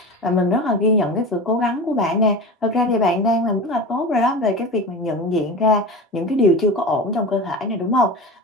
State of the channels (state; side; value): normal; both; correlation 0.30